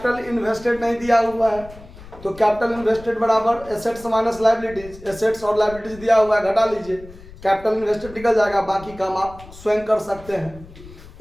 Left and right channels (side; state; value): left; noise; rumble, 19 dB below the sound